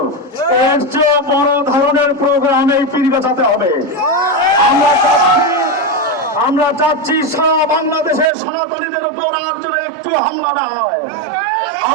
এর চেয়ে বড় ধরনের প্রোগ্রাম এই পীরগাছাতে হবে। আমরা চাচ্ছি সারা বাংলাদেশের সনাতনীদের উপর আর যেন একটু হামলা না হয়।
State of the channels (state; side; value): drops out; left; at 8.3 s